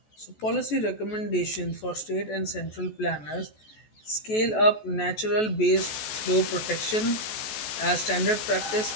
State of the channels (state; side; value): late; right; 14 ms